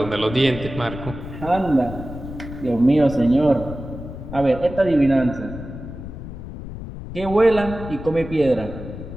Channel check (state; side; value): noise; left; rumble, 11 dB below the sound